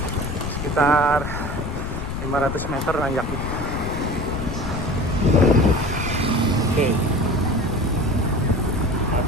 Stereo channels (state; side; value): noise; left; rumble, 5 dB below the sound